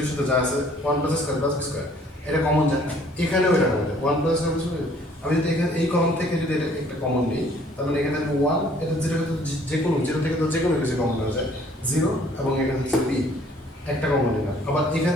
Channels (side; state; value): both; normal; correlation 0.58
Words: এর সাথে যা আছে 1 plus a square plus b square, এটা কমন যায়, এখানেও এটা কমন যায় 1 প্লাস a স্কয়ার। আমি যদি এখানে এই কলাম থেকে যদি এটা একটা কমন নিই, তার মানে এখানে 1, এটা 0 যে কোনো 0 থেকে তো যে কোনো কিছু কমন হয়ে যায় 0, এবং এখানে হচ্ছে b একটা কমন নিলাম, আবার এখান